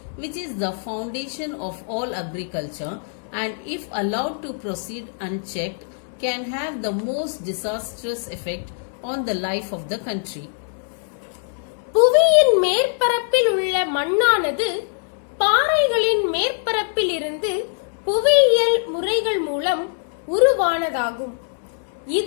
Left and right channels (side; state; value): right; silent; digital silence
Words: which is the foundation of all agriculture, and if allowed to proceed unchecked, can have the most disastrous effect on the life of the country. புவியின் மேற்பரப்பில் உள்ள மண்ணானது பாறைகளின் மேற்பரப்பில் இருந்து புவியியல் முறைகள் மூலம் உருவானதாகும்.